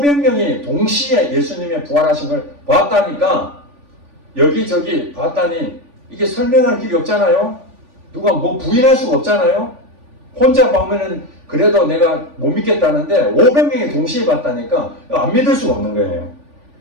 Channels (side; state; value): left; late; 3.5 ms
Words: 동시에 예수님의 부활하신 걸 봤다니까 여기저기 봤다니 이게 설명할 길이 없잖아요. 누가 뭐 부인할 수가 없잖아요. 혼자 보면은 그래도 내가 못 믿겠다는데 500명이 동시에 봤다니까 안 믿을 수가 없는 거예요.